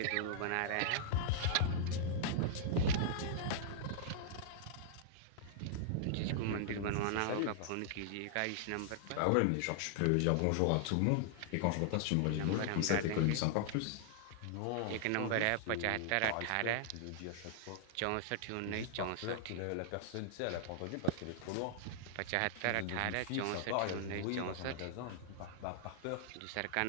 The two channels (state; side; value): different; both; correlation -0.01